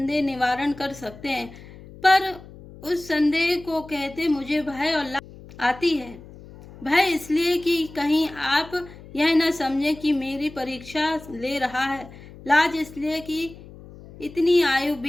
निवारण कर सकते हैं, पर उस संदेह को कहते मुझे भय और लाज आती है। भय इसलिए कि कहीं आप यह न समझें कि मेरी परीक्षा ले रहा है। लाज इसलिए कि इतनी आयु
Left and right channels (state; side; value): noise; left; hum, 18 dB below the sound